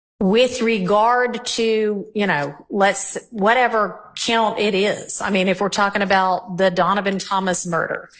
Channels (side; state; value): both; identical; correlation 1.00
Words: With regard to, whatever count it is. If we're talking about the Donovan Thomas murder,